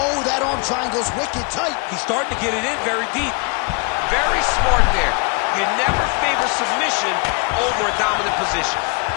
that arm triangle's wicked tight. He's starting to get it in very deep. Very smart there. You never favor submission over a dominant position.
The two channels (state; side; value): quieter; right; 32.5 dB